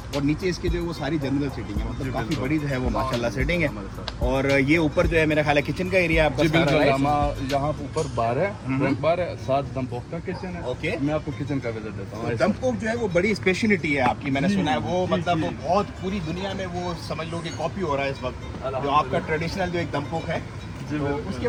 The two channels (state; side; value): identical; both; correlation 1.00